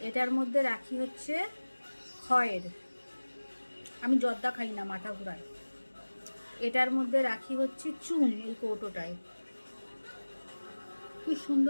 এটার মধ্যে রাখি হচ্ছে খয়ের, আমি জর্দা খাই না, মাথা ঘুরায়। এটার মধ্যে রাখি হচ্ছে চুন, এই কৌটোটায়, কি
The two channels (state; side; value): inverted; both; correlation -1.00